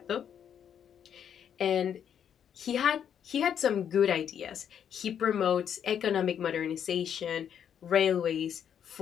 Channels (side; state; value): right; quieter; 8.7 dB